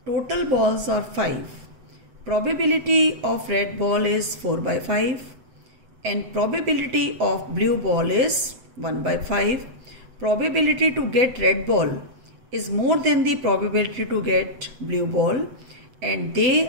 Total balls are 5. Probability of red ball is 4 by 5 and probability of blue ball is 1 by 5. Probability to get red ball is more than the probability to get blue ball, and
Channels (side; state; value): left; late; 8.0 ms